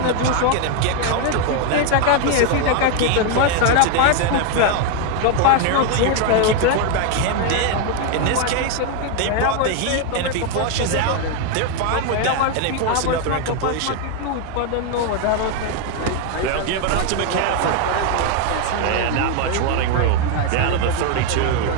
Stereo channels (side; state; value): both; different; correlation 0.01